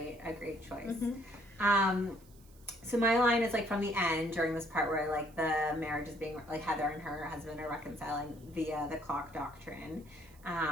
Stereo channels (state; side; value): noise; right; hiss, 27 dB below the sound